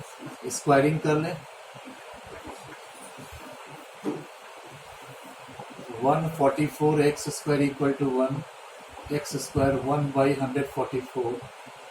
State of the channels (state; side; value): identical; both; correlation 1.00